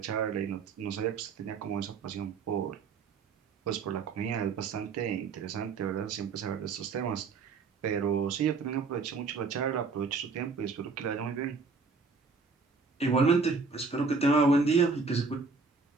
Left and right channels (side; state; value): left; quieter; 4.5 dB